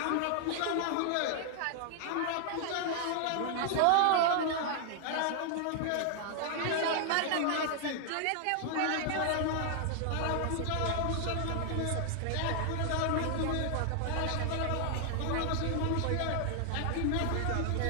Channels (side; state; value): both; different; correlation 0.00